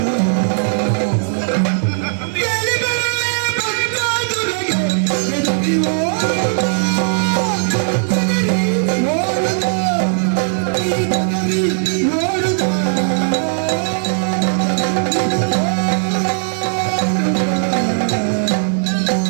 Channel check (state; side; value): silent; left; digital silence